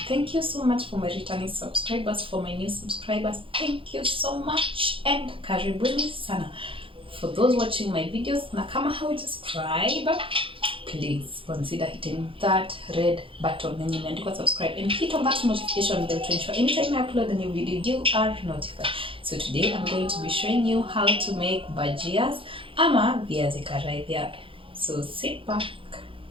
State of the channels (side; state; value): left; late; 0.26 ms